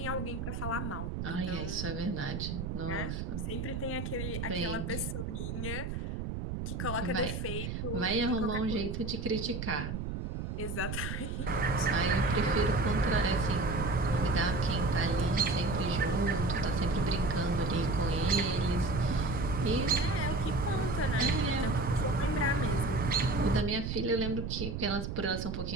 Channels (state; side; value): noise; right; rumble, 4 dB below the sound